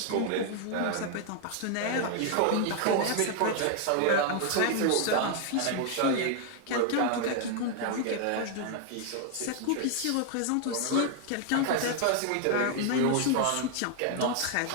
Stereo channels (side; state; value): both; different; correlation 0.00